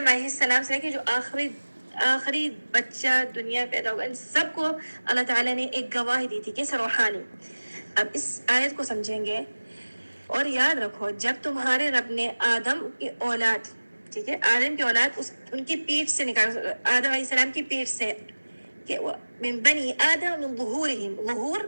علیہ السلام سے لے کے جو آخری بچہ دنیا پیدا ہوگا، ان سب کو اللہ تعالیٰ نے ایک گواہی دی تھی، کیسے روحانی. اب اس آیت کو سمجھیں گے اور یاد رکھو جب تمہارے رب نے آدم کی اولاد، ٹھیک ہے، آدم کی اولاد ان کی پیٹھ سے نکال، آدم علیہ السلام کی پیٹھ سے، کہ من بنی آدم من ظہورہم، ظہور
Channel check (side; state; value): both; inverted; correlation -1.00